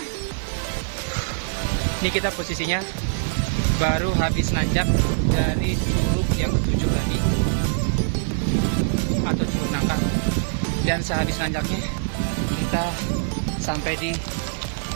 ini kita posisinya baru habis nanjak dari curug yang 7 tadi, atau curug nangka. Dan sehabis nanjaknya kita sampai di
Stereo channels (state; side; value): silent; left; digital silence